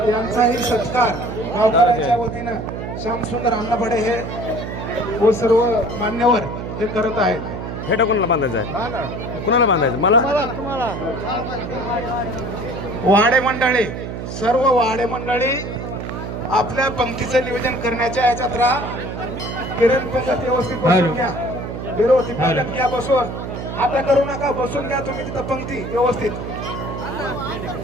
यांचाही सत्कार गावकऱ्यांच्या वतीनं श्यामसुंदर अण्णाभडे हे व सर्व मान्यवर हे करत आहेत. फेटा कोणाला बांधायचा आहे कुणाला बांधायचं मला वाडे मंडळी सर्व वाडे मंडळी आपल्या पंक्तीचं नियोजन करण्याच्या याच्यात राहा. किरण पंगत व्यवस्थित बसून घ्या. व्यवस्थित पंगत घ्या बसून. आता करू नका बसून घ्या तुम्ही तिथं पंक्ती व्यवस्थित.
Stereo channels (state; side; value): noise; right; hum, 6 dB below the sound